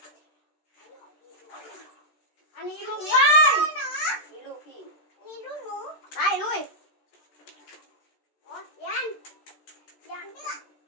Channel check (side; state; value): right; late; 14 ms